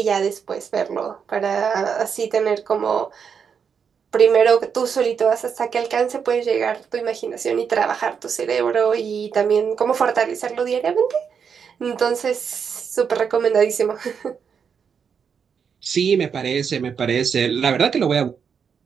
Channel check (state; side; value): quieter; left; 6.8 dB